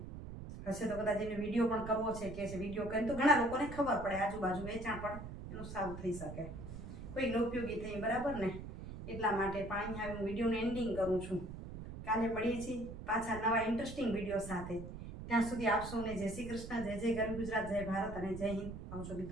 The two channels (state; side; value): noise; right; rumble, 10 dB below the sound